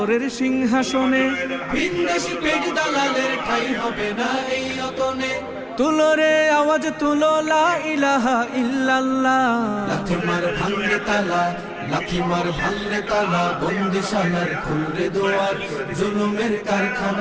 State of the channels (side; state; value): both; identical; correlation 1.00